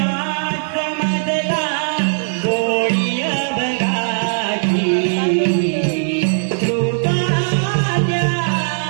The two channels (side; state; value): left; silent; digital silence